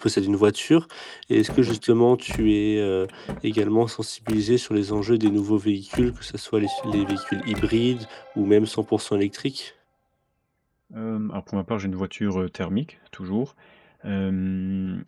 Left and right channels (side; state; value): both; identical; correlation 1.00